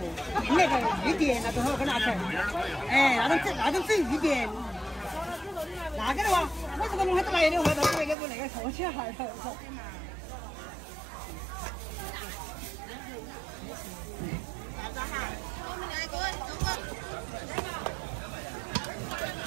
那个一点那多少个拿出来？哎，那种整一点。那个的话，我这个弄还来的话，到时候给我那个说起来了。我们两个中国。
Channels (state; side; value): drops out; left; at 8.2 s